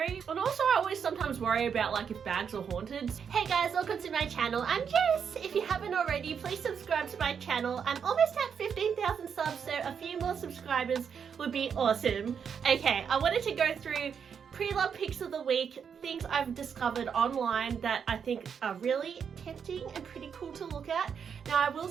And also I always sometimes worry about like if bags are haunted. Hey guys, welcome to my channel. I'm Jess. If you haven't already, please subscribe to my channel. I'm almost at 15,000 subs, so a few more subscribers would be awesome. Okay, I wanted to go through pre-loved picks of the week, things I've discovered online that I think are really tempting and pretty cool to look at. Now I will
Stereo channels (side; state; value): left; quieter; 7.1 dB